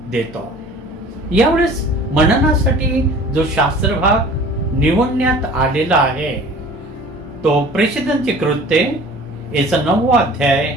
देतो. यावेळेस मननासाठी जो शास्त्रभाग निवडण्यात आलेला आहे तो प्रेषितांची कृत्ये याचा 9वा अध्याय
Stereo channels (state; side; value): normal; both; correlation 0.46